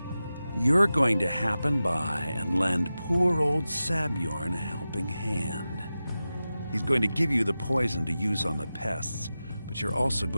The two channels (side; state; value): both; inverted; correlation -0.94